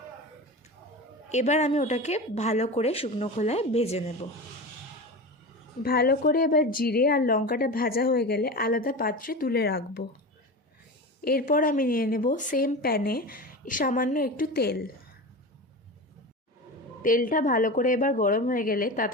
এবার আমি ওটাকে ভালো করে শুকনো খোলায় ভেজে নেব। ভালো করে এবার জিরে আর লঙ্কাটা ভাজা হয়ে গেলে আলাদা পাত্রে তুলে রাখবো। এরপর আমি নিয়ে নেব সেম প্যানে সামান্য একটু তেল। তেলটা ভালো করে এবার গরম হয়ে গেলে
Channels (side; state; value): both; normal; correlation 0.27